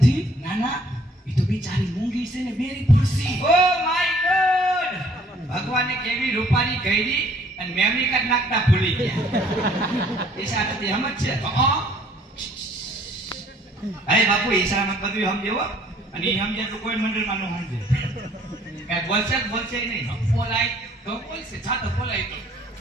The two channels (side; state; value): both; normal; correlation 0.59